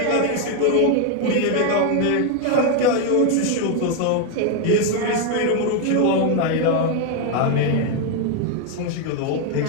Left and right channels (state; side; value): different; both; correlation 0.01